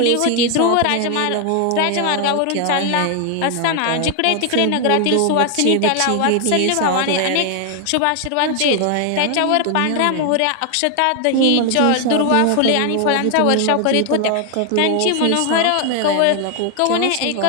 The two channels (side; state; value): both; different; correlation 0.00